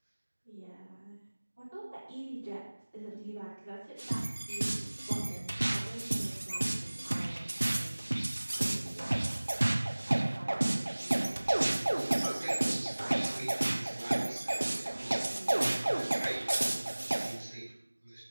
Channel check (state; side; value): inverted; both; correlation -1.00